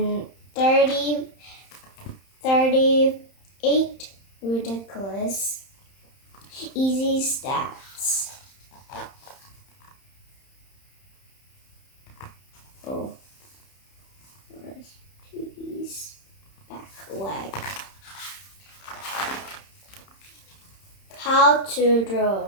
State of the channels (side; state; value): right; late; 31 ms